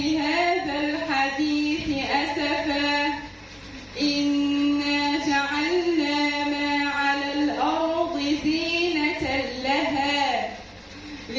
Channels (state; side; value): identical; both; correlation 1.00